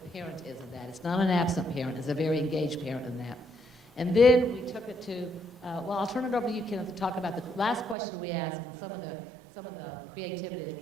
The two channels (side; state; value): left; drops out; at 8.0 s